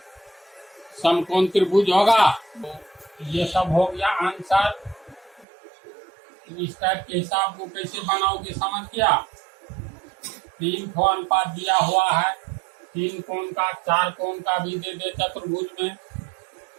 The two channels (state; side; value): drops out; left; at 5.5 s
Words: समकोण त्रिभुज होगा। तो ये सब हो गया आंसर। इस टाइप के हिसाब को कैसे बनाओगे समझ गया? 3 को अनुपात दिया हुआ है, 3 कोण का, 4 कोण का भी दे दे चतुर्भुज में,